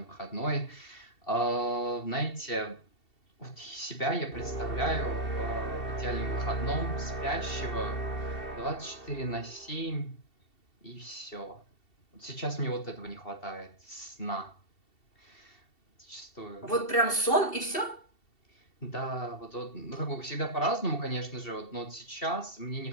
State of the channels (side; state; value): right; late; 2.7 ms